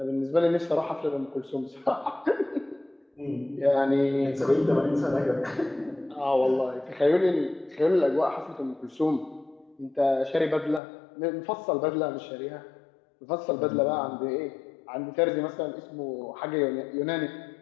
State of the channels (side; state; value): right; drops out; at 10.8 s